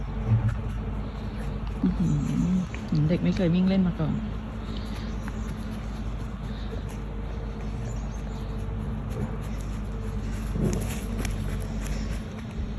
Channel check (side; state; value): both; identical; correlation 1.00